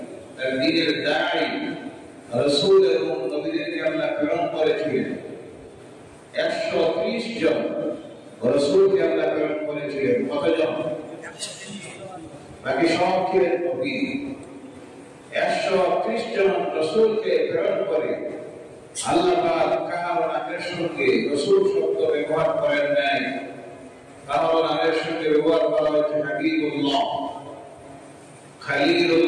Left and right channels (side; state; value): both; identical; correlation 1.00